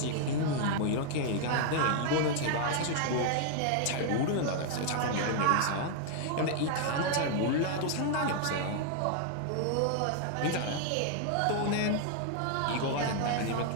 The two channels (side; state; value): both; different; correlation 0.00